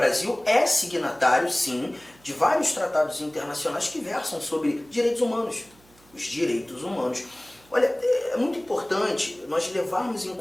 é signatário, sim, de vários tratados internacionais que versam sobre direitos humanos. Os direitos humanos. Olha, é muito importante nós levarmos em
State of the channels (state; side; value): noise; right; hum, 29 dB below the sound